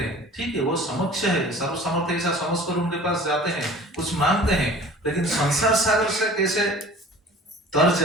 हैं। ठीक है, वो समक्ष है, सर्व समर्थ ऐसा समझकर उनके पास जाते हैं, कुछ मांगते हैं, लेकिन संसार सागर से कैसे तर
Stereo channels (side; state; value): both; normal; correlation 0.44